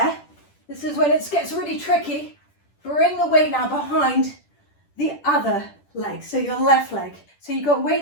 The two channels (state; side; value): late; right; 10 ms